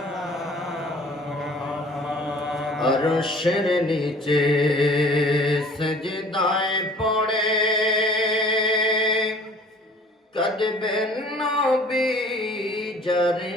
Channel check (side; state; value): both; normal; correlation 0.49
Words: আরশের নিচে সজদায় পড়ে কাঁদবেন নবী যারে